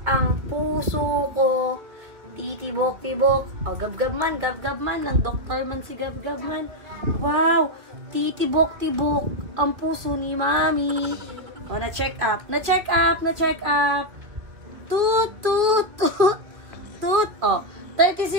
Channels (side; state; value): left; late; 2.3 ms